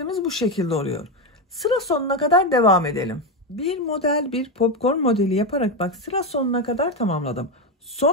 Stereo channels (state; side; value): normal; both; correlation 0.10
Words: bu şekilde oluyor. Sıra sonuna kadar devam edelim. Bir model, bir popcorn modeli yaparak bak sıra sonuna kadar tamamladım.